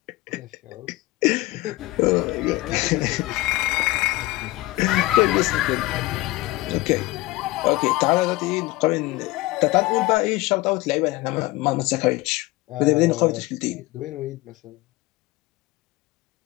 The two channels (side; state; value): right; quieter; 19.4 dB